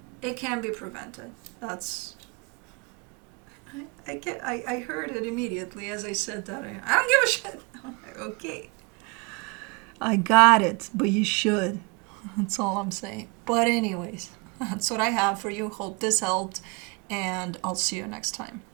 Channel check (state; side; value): quieter; left; 30.0 dB